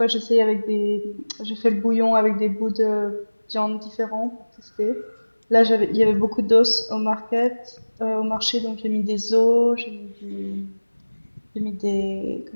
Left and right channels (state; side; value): inverted; both; correlation -1.00